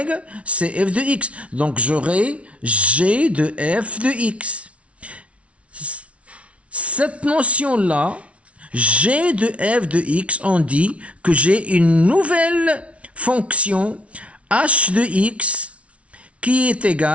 C'est f de x. Donc j'aurai g de f de x. Cette notion-là, g de f de x, on dit que j'ai une nouvelle fonction h de x qui est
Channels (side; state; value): left; late; 0.063 ms